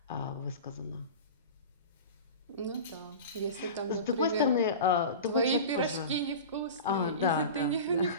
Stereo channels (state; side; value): inverted; both; correlation -0.32